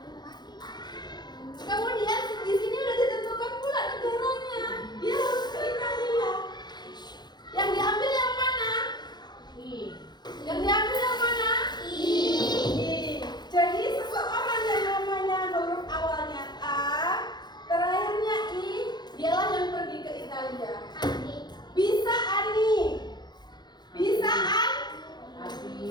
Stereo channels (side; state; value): right; late; 0.21 ms